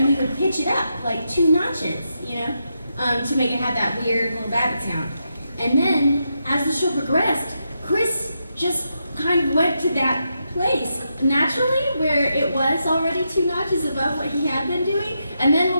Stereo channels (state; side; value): inverted; both; correlation -0.84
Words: we would pitch it up like 2 notches, you know, to make it have that weird little Babbitt sound. And then, as the show progressed, Chris just kind of went to that place naturally where it was already 2 notches above what he had been doing. And then